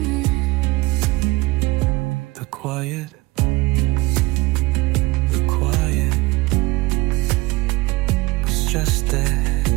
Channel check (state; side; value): quieter; left; 21.2 dB